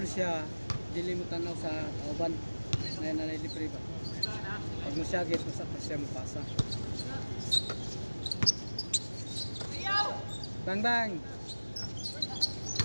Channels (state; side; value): inverted; both; correlation -1.00